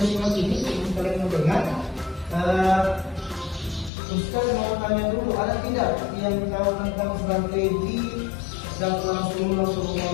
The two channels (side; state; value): right; drops out; at 3.9 s